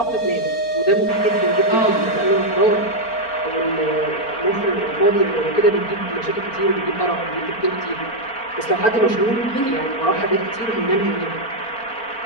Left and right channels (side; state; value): right; late; 4.4 ms